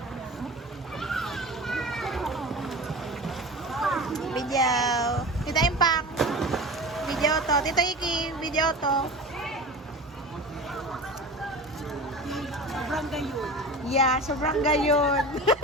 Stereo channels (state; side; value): normal; both; correlation 0.33